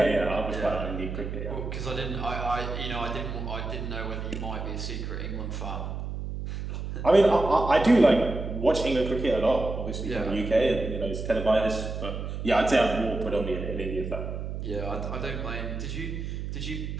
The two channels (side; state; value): right; noise; hum, 5 dB below the sound